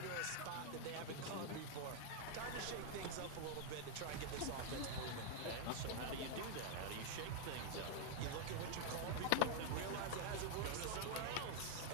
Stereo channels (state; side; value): different; both; correlation 0.00